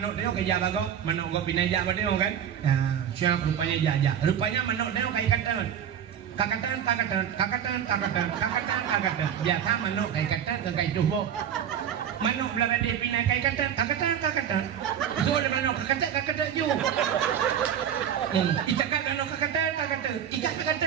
dia kerja bago. Mano go pindah jak dia kan. Nah, siapa rupanya jajak. Rupanya mano dia kayak kata. Kakatan. Biasa manuk kayak kata kayak cubo. Manuk belara dia pindah kayak kakatan. So ada manuk kakatan ju. Icakkan manuk kakatan. Ikat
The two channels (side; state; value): left; quieter; 9.1 dB